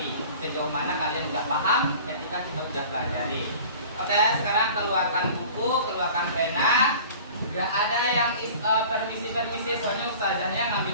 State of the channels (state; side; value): inverted; both; correlation -0.43